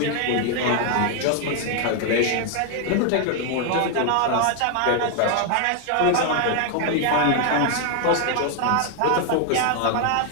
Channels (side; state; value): both; different; correlation 0.00